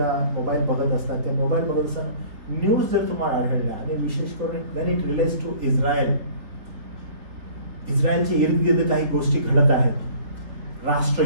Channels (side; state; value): left; late; 3.8 ms